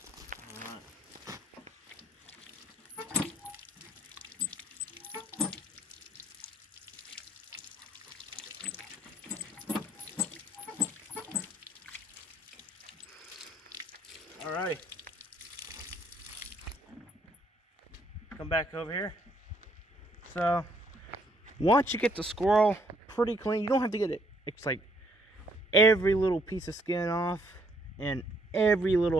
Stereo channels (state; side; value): normal; both; correlation 0.67